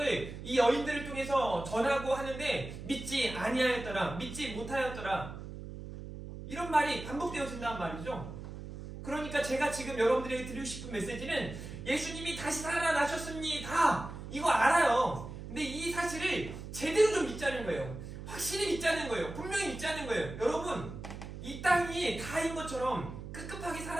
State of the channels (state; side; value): noise; right; hum, 10 dB below the sound